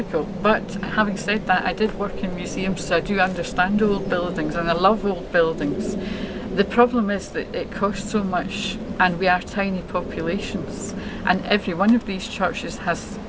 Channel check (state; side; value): identical; both; correlation 1.00